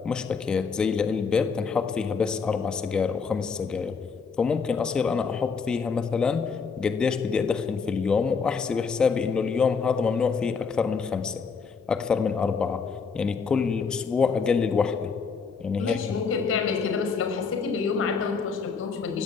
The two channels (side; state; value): right; quieter; 5.4 dB